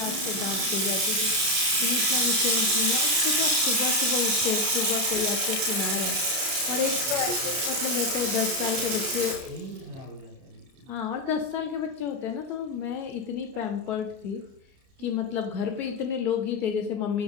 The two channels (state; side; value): late; left; 31 ms